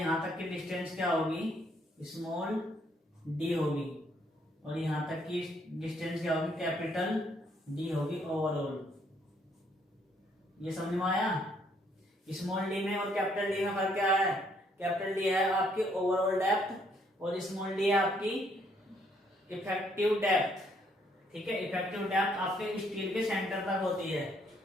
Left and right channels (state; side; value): normal; both; correlation 0.69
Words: तक की डिस्टेंस क्या होगी, स्मॉल d होगी, और यहां तक की डिस्टेंस क्या होगी, कैपिटल D होगी ओवरऑल। ये समझ में आया? स्मॉल d में और कैपिटल D में फर्क क्या है? कैपिटल D है आपकी ओवरऑल डेप्थ, और स्मॉल d है आपकी इफेक्टिव डेप्थ। ठीक है, इफेक्टिव डेप्थ आपके स्टील के सेंटर तक होती है।